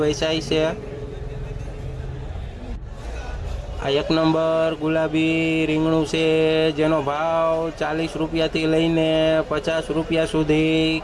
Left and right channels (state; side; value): identical; both; correlation 1.00